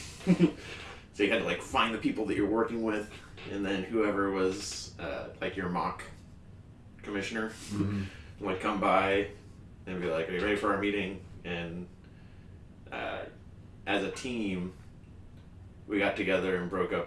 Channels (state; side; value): identical; both; correlation 1.00